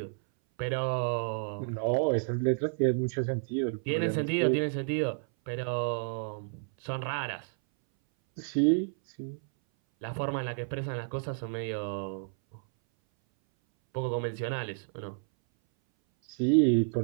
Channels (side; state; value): left; silent; 57 dB below the other